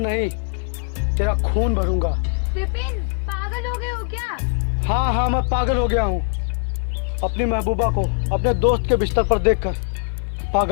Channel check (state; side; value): quieter; right; 39.0 dB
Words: तेरा खून भरूंगा। विपिन, पागल हो गए हो क्या? हाँ, मैं पागल हो गया हूँ। अपनी महबूबा को अपने दोस्त के बिस्तर पर देखकर